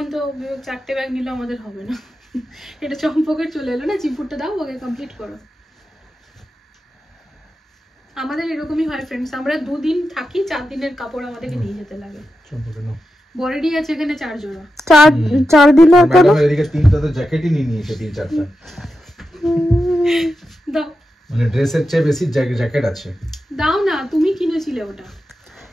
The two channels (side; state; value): both; normal; correlation 0.90